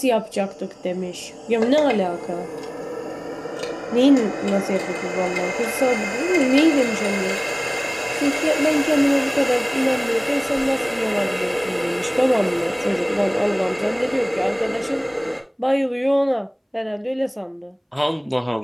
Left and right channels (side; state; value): both; identical; correlation 1.00